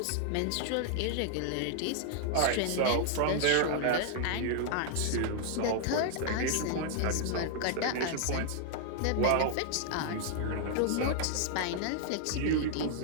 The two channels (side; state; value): both; different; correlation -0.01